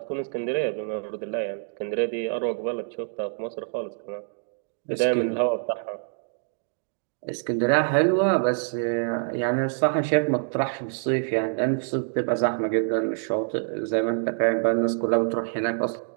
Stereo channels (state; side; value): silent; left; digital silence